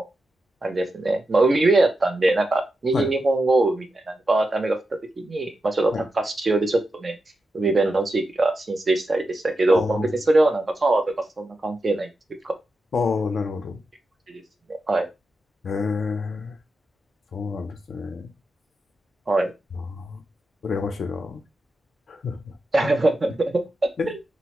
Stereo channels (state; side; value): normal; both; correlation 0.88